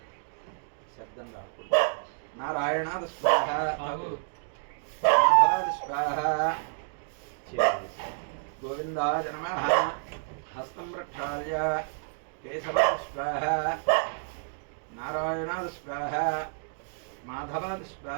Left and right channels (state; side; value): silent; left; digital silence